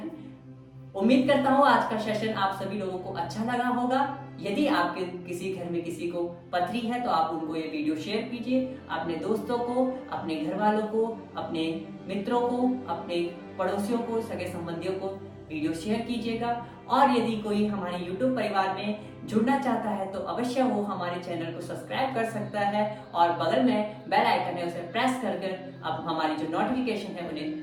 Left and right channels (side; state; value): both; identical; correlation 1.00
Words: उम्मीद करता हूँ आज का सेशन आप सभी लोगों को अच्छा लगा होगा। यदि आपके किसी घर में किसी को पथरी है तो आप उनको ये वीडियो शेयर कीजिए, अपने दोस्तों को, अपने घर वालों को, अपने मित्रों को, अपने पड़ोसियों को, सगे संबंधियों को वीडियो शेयर कीजिएगा। और यदि कोई हमारे YouTube परिवार में जुड़ना चाहता है तो अवश्य वो हमारे चैनल को सब्सक्राइब कर सकता है और बगल में बेल आइकन है उसे प्रेस कर अब हमारी जो नोटिफिकेशन है